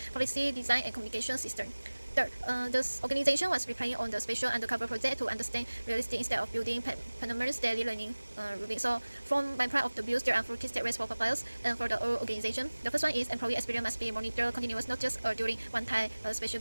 policy, design, and communication system. Third, this organization was relying on the special undercover project to understand realistic instead of building permanent daily learning routine. So, from my part of the views, there are 4 key steps for Popeyes and for the whole organization. The first one is employee experience must be monitored continuous, not just during one-time special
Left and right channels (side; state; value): both; inverted; correlation -1.00